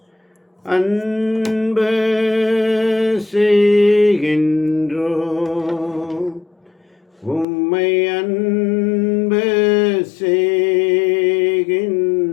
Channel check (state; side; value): drops out; right; at 7.5 s